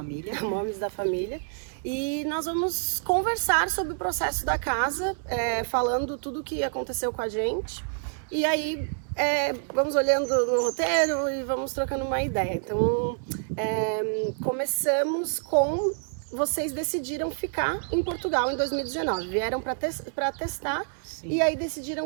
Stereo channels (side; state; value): left; silent; 60 dB below the other